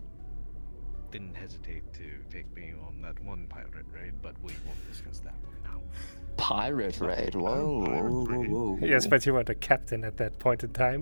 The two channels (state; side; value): inverted; both; correlation -1.00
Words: Didn't hesitate to take me on that one pirate raid, but we won't discuss that right now. Pirate raid? Whoa. Yes, but you weren't a captain at that point in